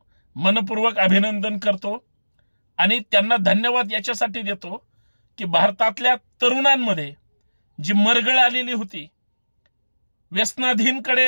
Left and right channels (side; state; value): both; inverted; correlation -1.00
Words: मनपूर्वक अभिनंदन करतो आणि त्यांना धन्यवाद याच्यासाठी देतो की भारतातल्या तरुणांमध्ये जी मरगळ आलेली होती,